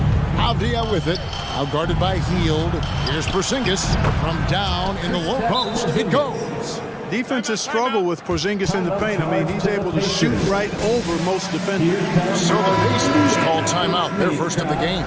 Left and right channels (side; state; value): both; identical; correlation 1.00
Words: Avdia with it. Out guarded by Hield. Here's Porzingis from down in the low post. It goes. Defenses struggle with Porzingis in the paint. I mean, he's able to shoot right over most defenders. So the Pacers call timeout. Their first of the game.